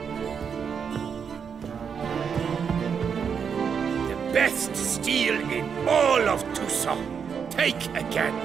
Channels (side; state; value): left; quieter; 6.8 dB